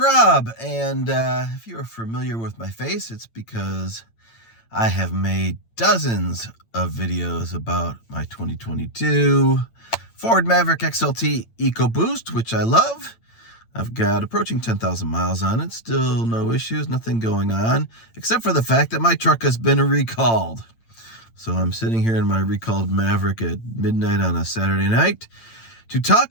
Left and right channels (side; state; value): right; late; 8.9 ms